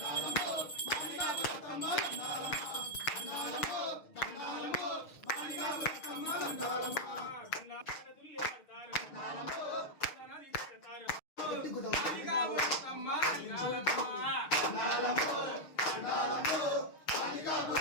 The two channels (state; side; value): late; right; 6.5 ms